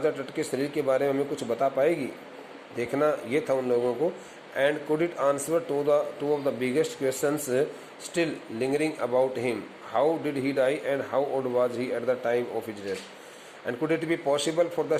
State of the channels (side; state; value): both; identical; correlation 1.00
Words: टट के शरीर के बारे में हमें कुछ बता पाएगी? देखना ये था उन लोगों को. And could it answer two of the biggest questions still lingering about him? How did he die and how old was he at the time of his death? And could it be possible for the